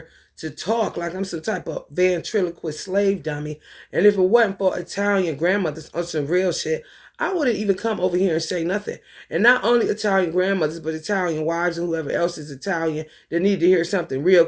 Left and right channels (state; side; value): identical; both; correlation 1.00